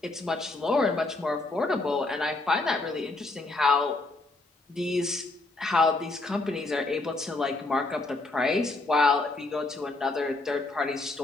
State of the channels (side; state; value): right; quieter; 3.1 dB